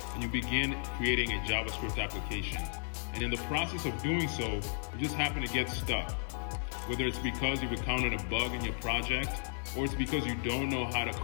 and you begin creating a JavaScript application. And in the process of doing so, you just happen to get stuck. Whether it's because you've encountered a bug in your project, or it's because you don't know how to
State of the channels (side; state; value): right; silent; digital silence